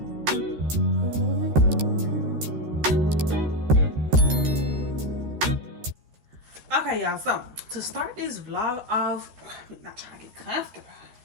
Okay, y'all. So to start this vlog off, I'm not trying to get comfortable.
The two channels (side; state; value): left; late; 13 ms